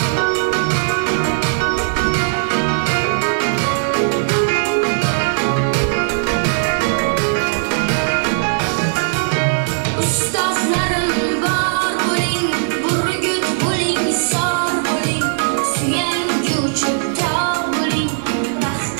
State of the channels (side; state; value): left; silent; 67 dB below the other